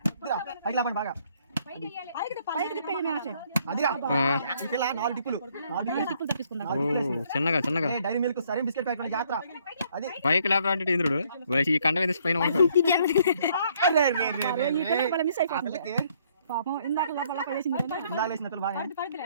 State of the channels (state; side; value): inverted; both; correlation -0.66